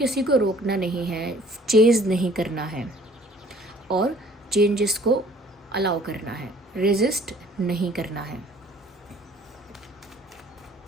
को रोकना नहीं है, चेज़ नहीं करना है और चेंजेस को अलाउ करना है, रेजिस्ट नहीं करना है।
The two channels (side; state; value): both; normal; correlation 0.55